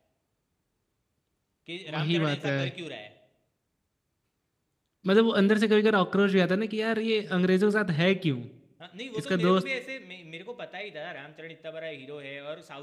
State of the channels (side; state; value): both; identical; correlation 1.00